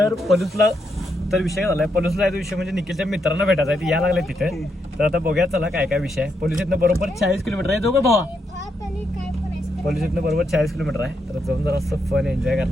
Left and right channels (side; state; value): both; normal; correlation 0.80